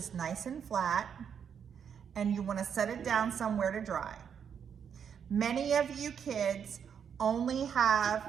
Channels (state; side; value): quieter; left; 7.6 dB